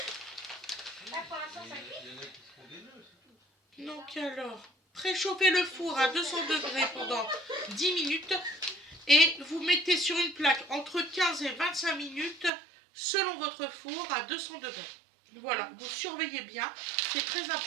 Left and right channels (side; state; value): left; drops out; at 12.5 s